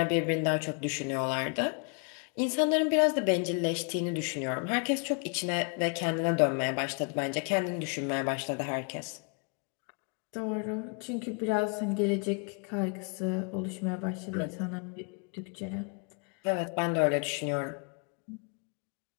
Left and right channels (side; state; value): right; quieter; 37.8 dB